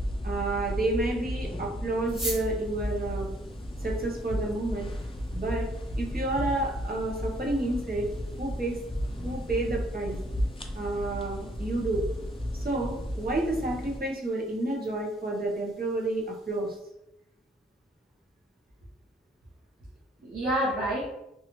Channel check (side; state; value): both; normal; correlation 0.65